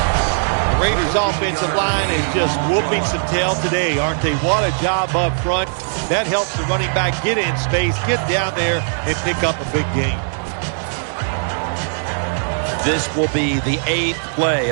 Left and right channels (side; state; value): left; silent; 62 dB below the other